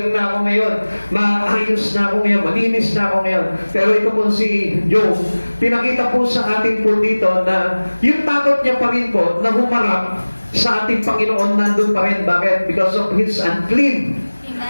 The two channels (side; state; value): both; inverted; correlation -1.00